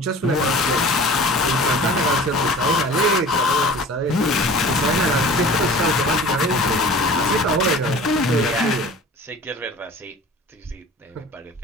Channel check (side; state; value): both; normal; correlation 0.43